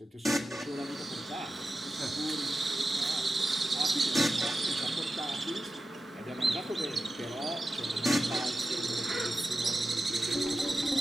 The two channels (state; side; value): normal; both; correlation 0.92